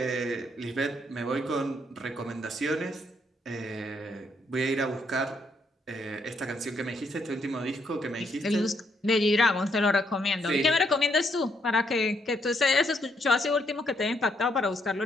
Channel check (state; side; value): normal; both; correlation 0.73